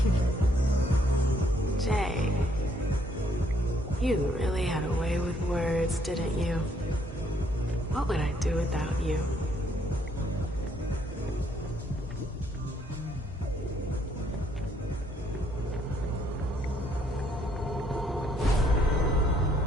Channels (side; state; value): both; normal; correlation 0.68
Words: Jay, you really had a way with words, didn't you? What would I do without you?